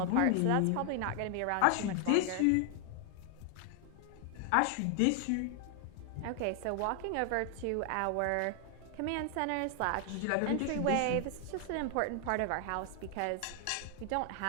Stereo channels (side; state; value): both; different; correlation 0.00